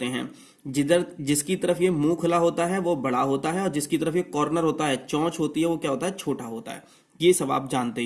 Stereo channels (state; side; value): identical; both; correlation 1.00